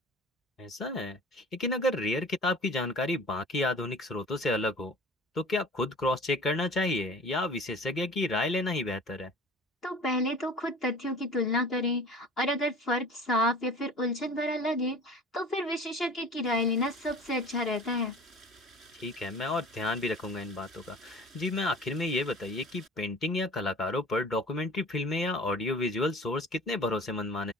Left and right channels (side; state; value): both; normal; correlation 0.42